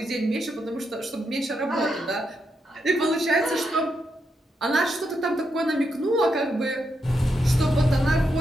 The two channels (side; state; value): both; normal; correlation 0.82